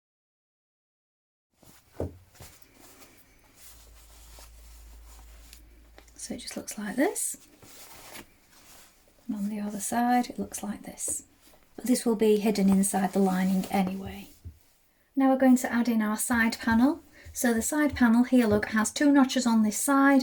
So it just looks like this, and on the other side it looks like this, but this will be hidden inside the lining anyway. Now we're going to add in our side panel. So the side panel here, look, has two notches on this side,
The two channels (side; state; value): both; identical; correlation 1.00